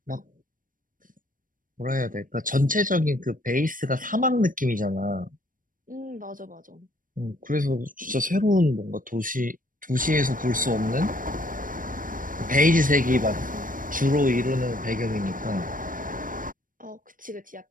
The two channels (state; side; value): late; left; 0.40 ms